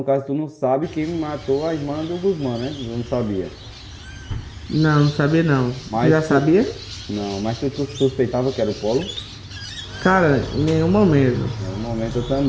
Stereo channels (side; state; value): both; identical; correlation 1.00